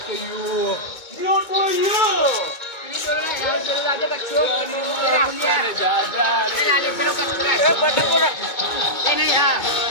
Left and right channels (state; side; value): late; right; 2.2 ms